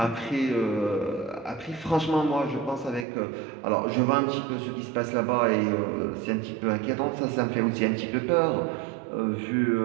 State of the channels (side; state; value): left; drops out; at 3.1 s